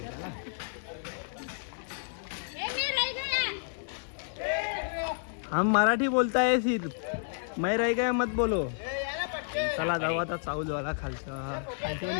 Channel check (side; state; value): right; silent; digital silence